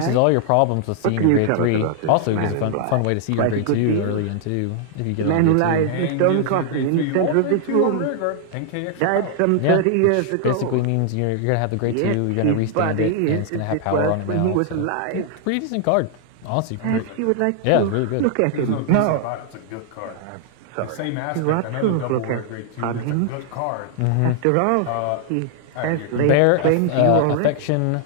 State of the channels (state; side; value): different; both; correlation 0.00